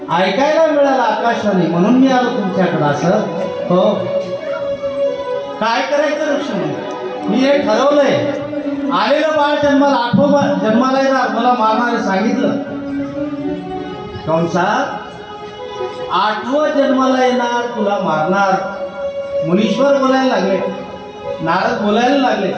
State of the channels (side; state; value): both; identical; correlation 1.00